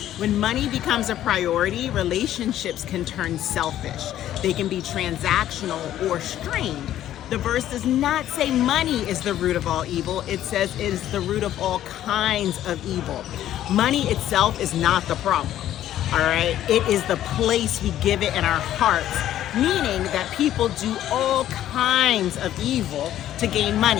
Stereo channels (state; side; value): quieter; right; 12.3 dB